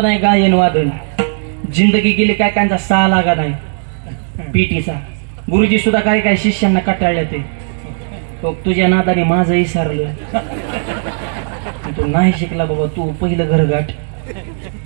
नाही गायन वादन. जिंदगी गेली काय कांचा सहा लागा नाही पीटीचा. गुरुजी सुद्धा काय काय शिष्यांना कटाळल्या ते तुझ्या नादाने माझं विसरलं, तू नाही शिकला बाबा, तू पहिलं घर गाठ,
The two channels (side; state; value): left; silent; digital silence